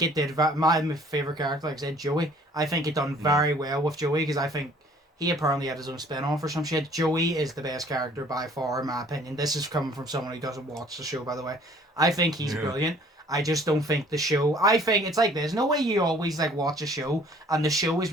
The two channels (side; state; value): both; normal; correlation 0.55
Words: it did. My favorite character, like I said, Joey. I think it done very well with Joey because I think. He apparently had his own spin-off or some shit. Joey is the best character by far, in my opinion. This is coming from someone who doesn't watch the show, by the way. I think he's brilliant. I just don't think the show... I think it's like this. No way you always like watch a show and the show is